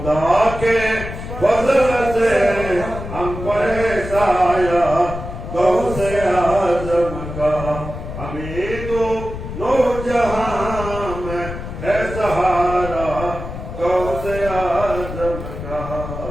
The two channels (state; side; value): noise; left; rumble, 8 dB below the sound